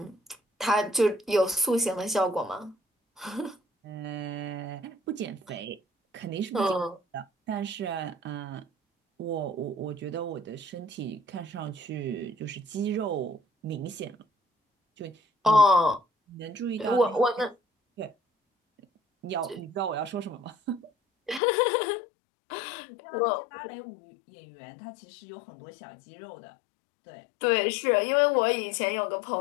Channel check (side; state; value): right; drops out; at 21.4 s